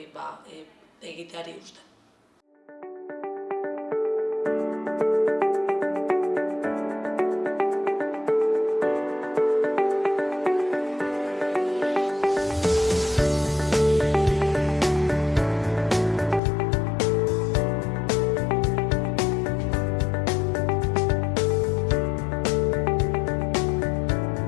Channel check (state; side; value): drops out; right; at 16.4 s